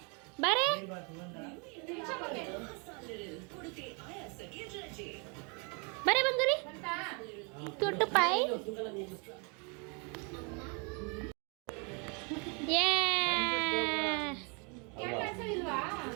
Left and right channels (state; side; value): quieter; left; 34.3 dB